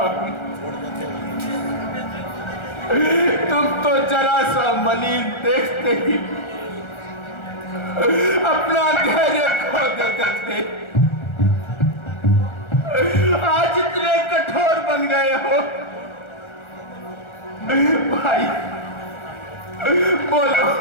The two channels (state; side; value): late; right; 1.4 ms